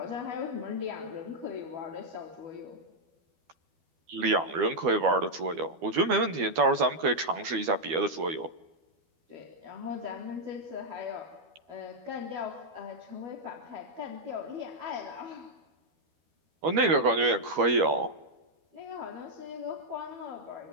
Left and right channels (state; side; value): late; left; 12 ms